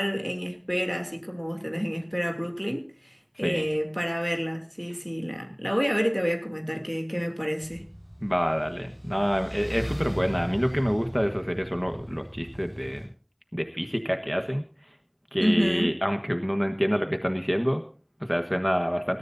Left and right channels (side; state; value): both; identical; correlation 1.00